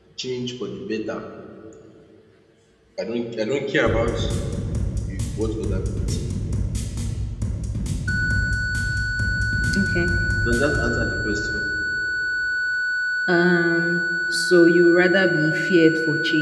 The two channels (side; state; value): both; identical; correlation 1.00